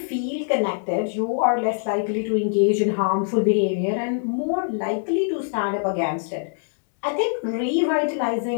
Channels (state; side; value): silent; right; digital silence